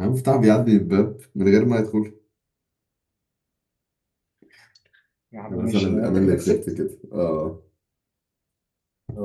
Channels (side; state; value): both; identical; correlation 1.00